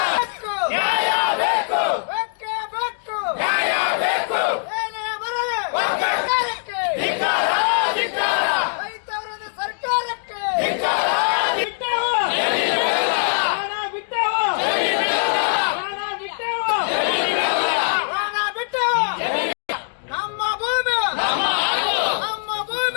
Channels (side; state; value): right; silent; digital silence